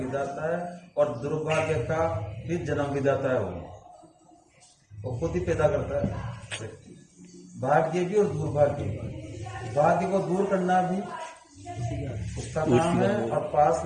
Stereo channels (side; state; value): both; identical; correlation 1.00